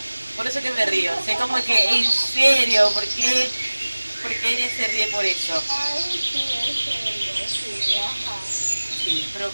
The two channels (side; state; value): both; inverted; correlation -1.00